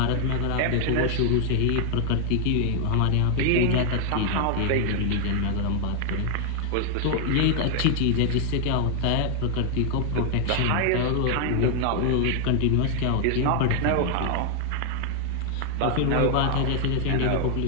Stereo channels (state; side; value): different; both; correlation 0.00